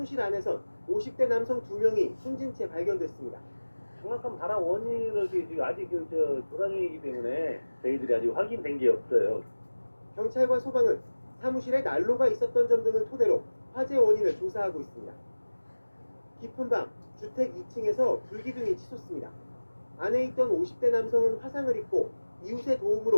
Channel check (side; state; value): both; inverted; correlation -1.00